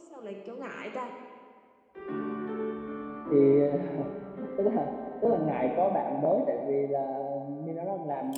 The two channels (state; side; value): identical; both; correlation 1.00